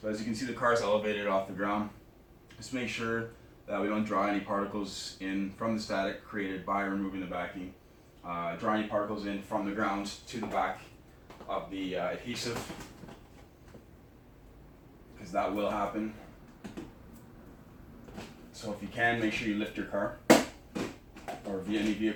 as you can see, the car is elevated off the ground. Just make sure that we don't draw any particles in from the static created by removing the backing. Draw any particles in from the ground to the back of the adhesive, because that will happen. So if you can, make sure you lift your car or any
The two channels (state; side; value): identical; both; correlation 1.00